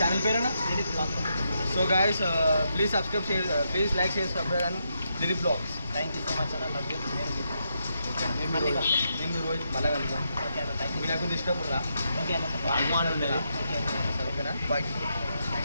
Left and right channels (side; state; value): both; inverted; correlation -0.81